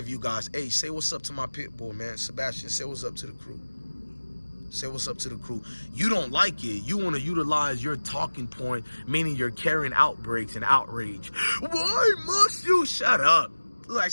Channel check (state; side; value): inverted; both; correlation -1.00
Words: you guys. Hey, say what's up to my pit bull, man. Sebastian, say what's up to the crew. Say what's up to the crew. You don't like it. You want to utilize your talking point, meaning you're carrying outbreaks and outrage. Why must you shut up? Like